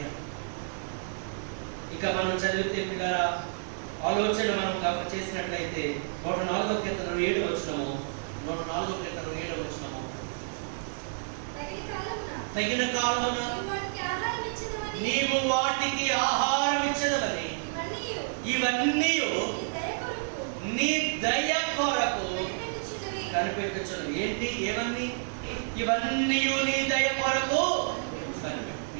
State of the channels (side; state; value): left; silent; 58 dB below the other